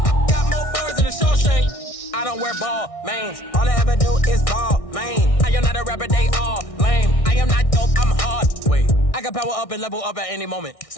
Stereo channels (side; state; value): right; late; 1.6 ms